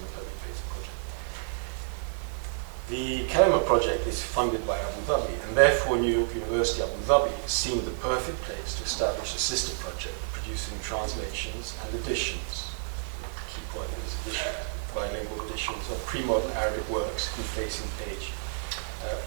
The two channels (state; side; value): silent; left; digital silence